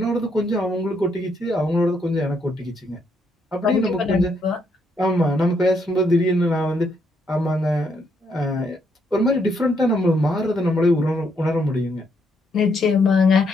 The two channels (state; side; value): normal; both; correlation 0.74